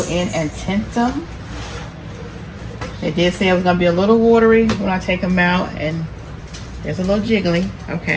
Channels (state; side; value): identical; both; correlation 1.00